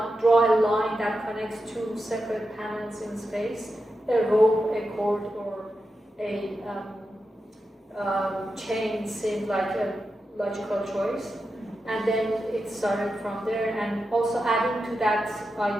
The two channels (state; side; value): normal; both; correlation 0.89